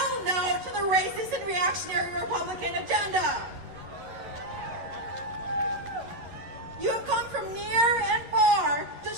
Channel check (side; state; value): left; late; 11 ms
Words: no to the racist and reactionary Republican agenda. You have come from near and far to